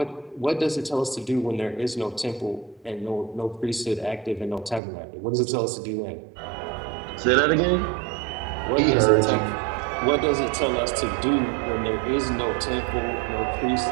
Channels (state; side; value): drops out; left; at 4.8 s